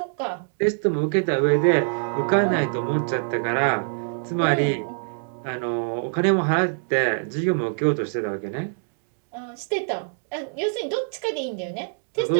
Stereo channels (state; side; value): silent; left; digital silence